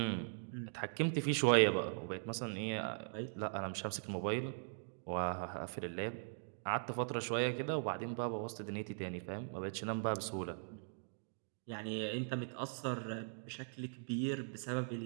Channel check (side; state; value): left; silent; digital silence